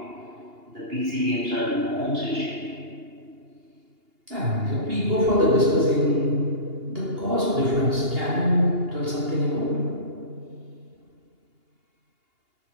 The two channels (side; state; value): left; late; 2.8 ms